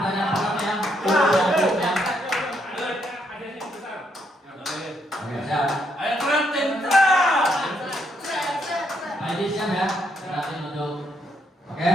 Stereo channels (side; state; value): both; normal; correlation 0.75